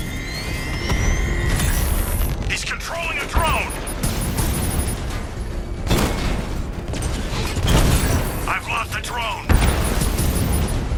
He's controlling a drone! I've lost the drone!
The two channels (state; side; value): identical; both; correlation 1.00